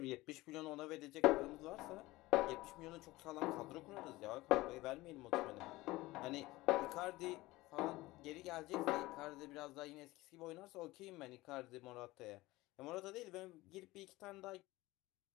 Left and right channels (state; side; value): quieter; right; 19.3 dB